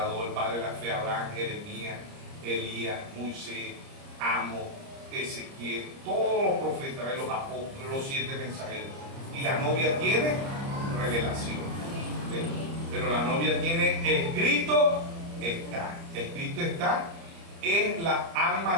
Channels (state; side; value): late; left; 30 ms